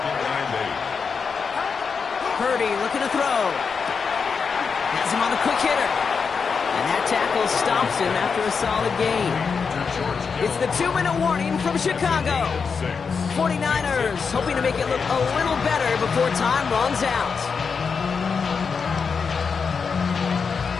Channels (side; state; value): right; quieter; 5.6 dB